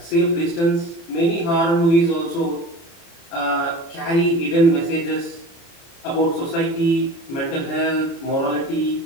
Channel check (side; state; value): right; late; 30 ms